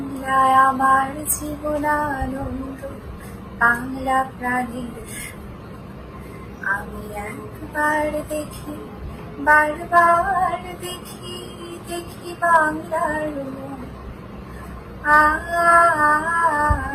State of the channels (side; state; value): both; identical; correlation 1.00